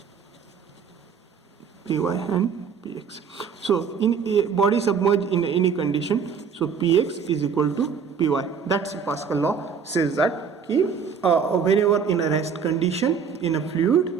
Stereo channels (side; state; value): left; quieter; 6.3 dB